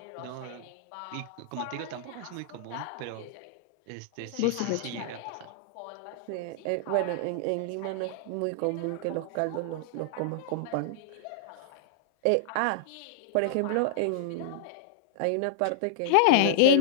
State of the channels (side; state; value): both; different; correlation -0.01